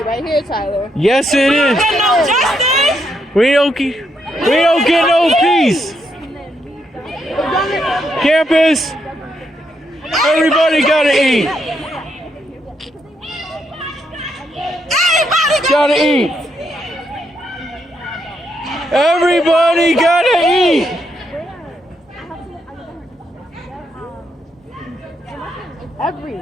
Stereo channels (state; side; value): normal; both; correlation 0.78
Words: right here, Tyler. Yes, it is. We don't get no peace. Campus, everybody gotta eat. Gotta eat. Everybody gotta eat.